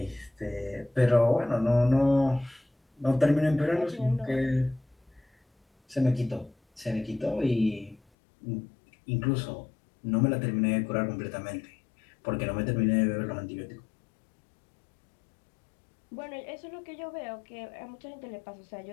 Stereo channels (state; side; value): drops out; right; at 8.0 s